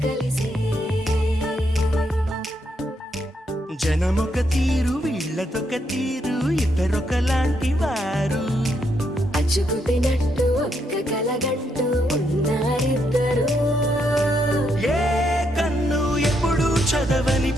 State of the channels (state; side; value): normal; both; correlation 0.77